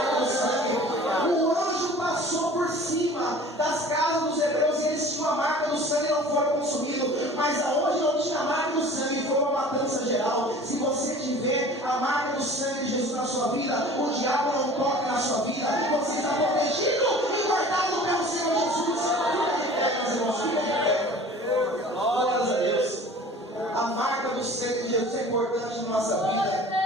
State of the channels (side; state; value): both; normal; correlation 0.44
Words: o sangue. O anjo passou por cima das casas dos hebreus e eles tinham a marca do sangue e não foram consumidos. Mas aonde não tinha a marca do sangue foi uma matança geral. Se você tiver a marca do sangue de Jesus na sua vida, o diabo não toca na sua vida. Você está protegido e guardado pelo Senhor Jesus. Fica de pé, meus irmãos, fica de pé. Glórias a Deus. A marca do sangue de Jesus é importante na nossa vida.